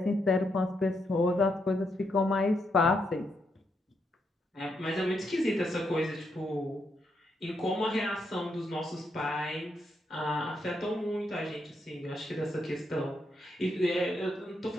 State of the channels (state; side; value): normal; both; correlation 0.79